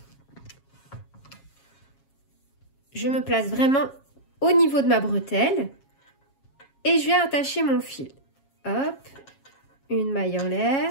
Je me place vraiment au niveau de ma bretelle. Et je vais attacher mon fil. Hop, une maille en l'air.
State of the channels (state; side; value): late; right; 7.3 ms